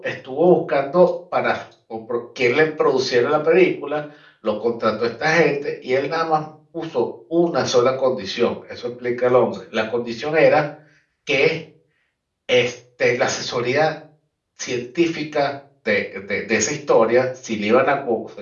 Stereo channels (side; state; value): both; identical; correlation 1.00